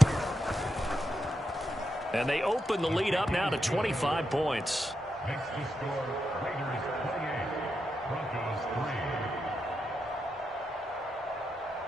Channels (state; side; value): normal; both; correlation 0.85